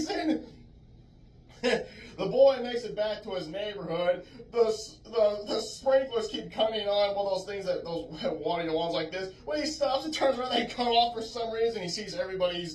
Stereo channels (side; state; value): both; identical; correlation 1.00